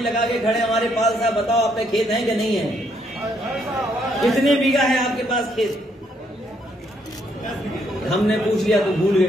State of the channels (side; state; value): both; normal; correlation 0.72